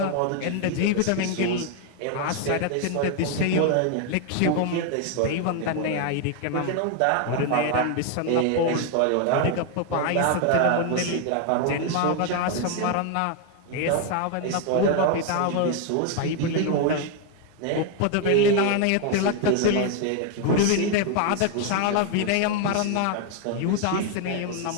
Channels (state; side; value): different; both; correlation 0.01